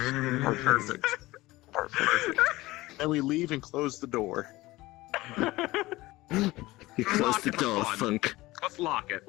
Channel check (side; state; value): right; quieter; 19.2 dB